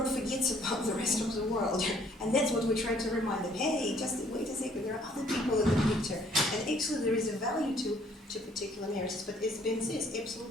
forgets about the rest of the world. And that's what we try to remind them. Hey, just wait a second, there are other people in the picture. And actually there is a value to particular narratives, but as Ben says,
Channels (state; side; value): normal; both; correlation 0.61